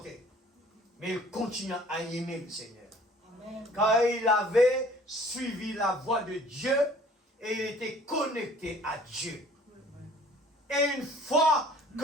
Mais il continua à aimer le Seigneur. Amen. Car il avait suivi la voie de Dieu et il était connecté à Dieu. Et une fois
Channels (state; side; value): normal; both; correlation 0.53